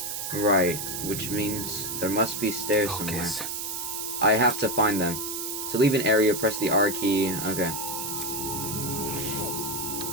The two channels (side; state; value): right; noise; hiss, 4 dB below the sound